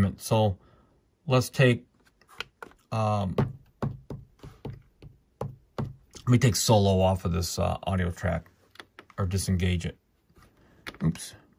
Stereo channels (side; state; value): both; identical; correlation 1.00